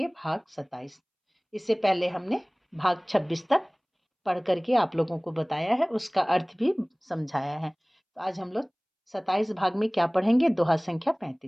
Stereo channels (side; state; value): both; identical; correlation 1.00